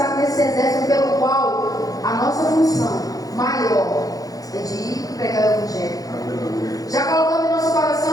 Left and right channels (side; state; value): right; late; 0.17 ms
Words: nesse exército pelo qual a nossa função maior é de ir pregar o Evangelho. Já colocando em nosso